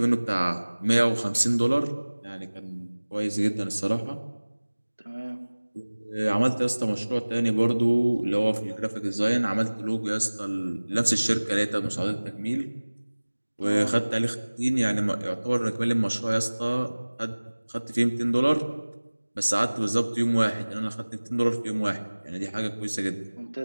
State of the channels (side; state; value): both; inverted; correlation -1.00